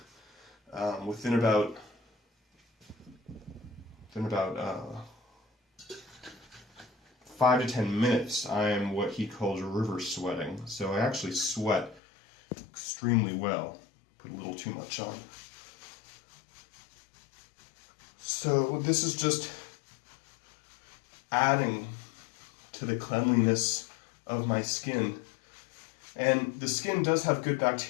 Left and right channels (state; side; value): drops out; right; at 12.0 s